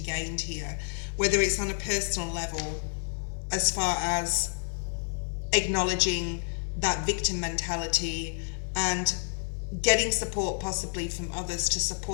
here, whether it's on a personal level, as far as acknowledging that victim mentality and getting support possibly from others to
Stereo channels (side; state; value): right; silent; digital silence